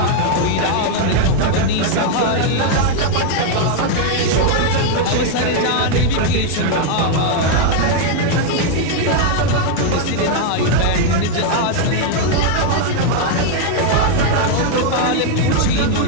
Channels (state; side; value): different; both; correlation 0.00